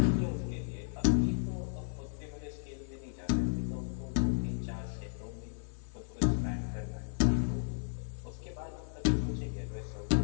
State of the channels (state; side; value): silent; right; digital silence